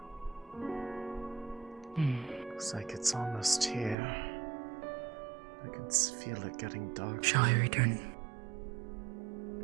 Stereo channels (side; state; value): left; drops out; at 4.0 s